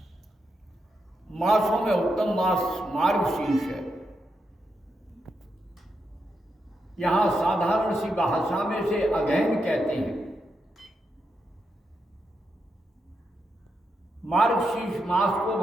मासों में उत्तम मास मार्गशीर्ष है। यहां साधारण सी भाषा में से अगहन कहते हैं। मार्गशीर्ष मास को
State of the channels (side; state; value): both; normal; correlation 0.84